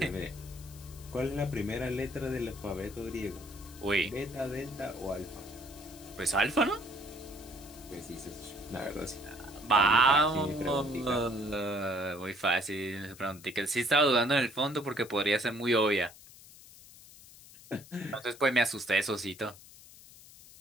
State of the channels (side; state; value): left; noise; hiss, 20 dB below the sound